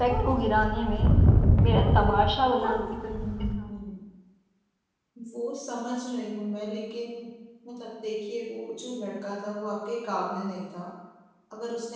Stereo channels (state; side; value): identical; both; correlation 1.00